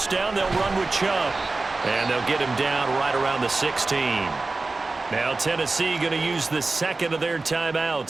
down, they'll run with Chubb. And they'll get him down right around the 16. Now Tennessee going to use the second of their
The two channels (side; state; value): left; quieter; 3.5 dB